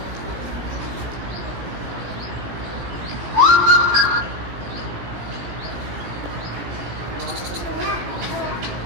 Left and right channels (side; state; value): left; late; 17 ms